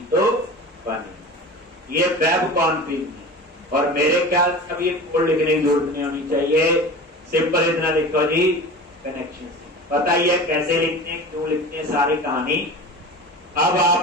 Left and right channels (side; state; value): both; normal; correlation 0.34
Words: तो बने। ये वेब कॉन्फ़िग है, और मेरे ख्याल से अब ये कोड लिखने की जरूरत नहीं होनी चाहिए, सिंपल इतना लिखो जी, कनेक्शन। पता ही है कैसे लिखते हैं, क्यों लिखते हैं, सारी कहानी। अब